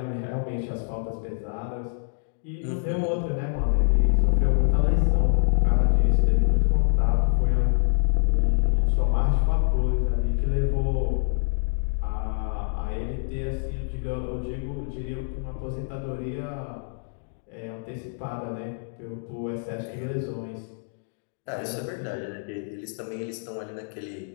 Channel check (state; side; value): silent; right; digital silence